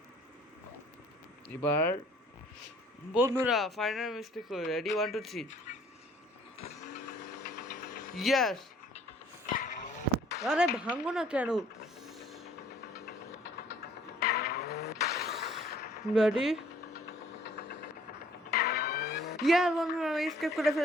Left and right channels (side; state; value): both; normal; correlation 0.57